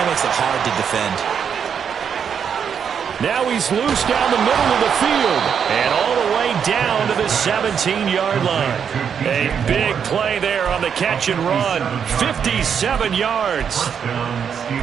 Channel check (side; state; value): left; quieter; 7.4 dB